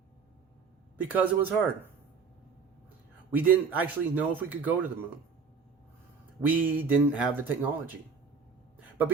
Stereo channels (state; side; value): quieter; left; 5.4 dB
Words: because it was hard. We didn't actually know if we could go to the moon. We didn't have the technology. But